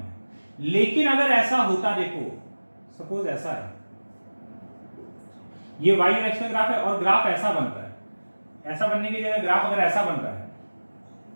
लेकिन अगर ऐसा होता, देखो सपोज ऐसा है, ये y और x का ग्राफ है और ग्राफ ऐसा बन रहा है, ऐसा बनने की जगह ग्राफ अगर ऐसा बन रहा है,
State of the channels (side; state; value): both; inverted; correlation -1.00